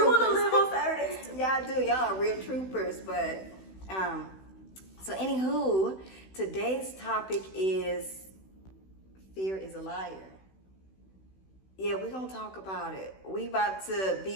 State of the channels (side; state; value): right; late; 16 ms